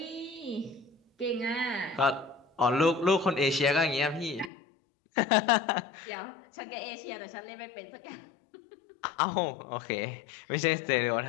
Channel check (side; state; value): right; drops out; at 4.5 s